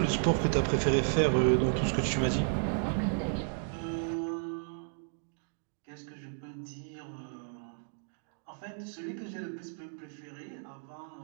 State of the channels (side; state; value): left; silent; digital silence